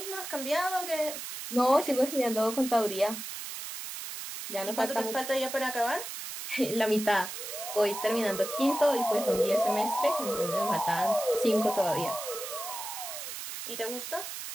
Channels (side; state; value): right; noise; hiss, 8 dB below the sound